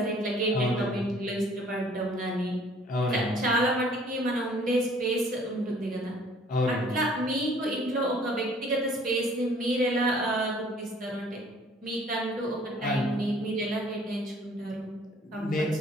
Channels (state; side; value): normal; both; correlation 0.56